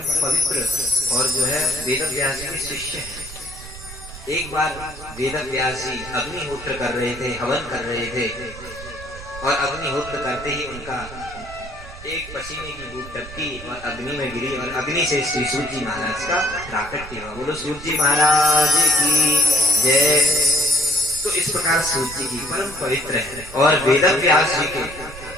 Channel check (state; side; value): noise; right; rumble, 15 dB below the sound